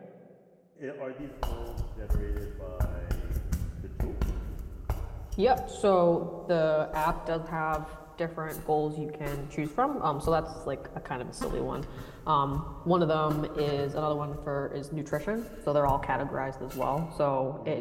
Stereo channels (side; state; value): both; identical; correlation 1.00